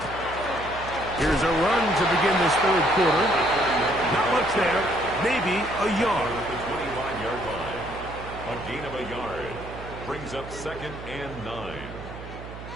Here's a run to begin this third quarter. Not much there. Maybe a yard. At the 25-yard line. A gain of a yard. Brings up 2nd and 9.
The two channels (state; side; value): noise; right; hum, 12 dB below the sound